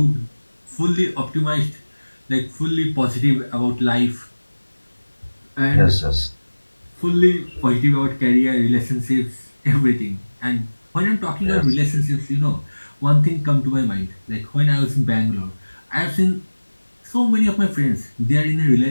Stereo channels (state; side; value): inverted; both; correlation -1.00